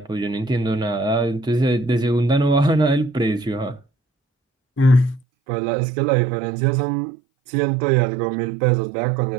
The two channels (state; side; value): drops out; left; at 5.2 s